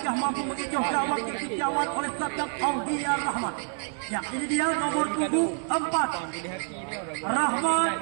mampu mengecoh gawang yang dijawab oleh Saddam Aulia Rahmat. Ya, ini dia nomor punggung 4 Rahmat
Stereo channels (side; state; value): left; silent; 60 dB below the other